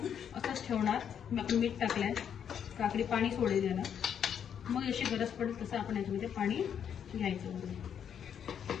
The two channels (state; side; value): quieter; right; 8.4 dB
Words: असंच ठेवणार. आपण मीठ टाकलंय, काकडी पाणी सोडेल याला. मग अशी गरज पडेल तसं आपण याच्यामध्ये पाणी घ्यायचं.